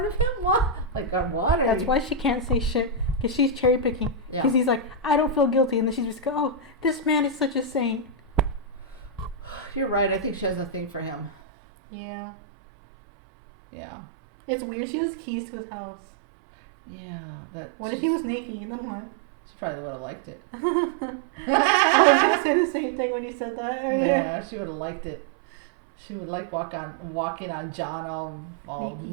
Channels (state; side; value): drops out; left; at 11.3 s